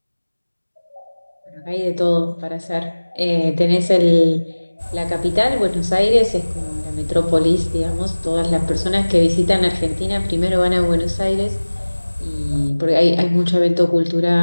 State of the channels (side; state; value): both; inverted; correlation -1.00